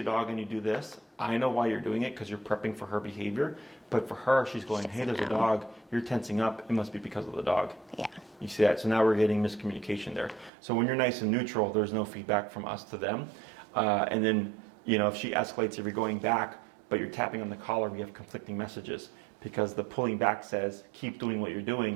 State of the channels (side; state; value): left; drops out; at 10.5 s